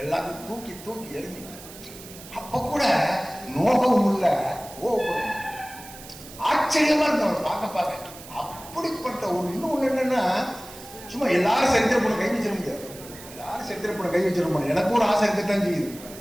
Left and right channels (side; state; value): right; noise; hiss, 16 dB below the sound